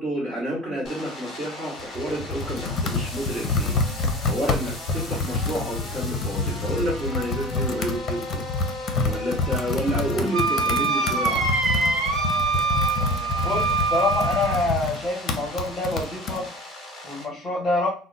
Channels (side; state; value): both; normal; correlation 0.38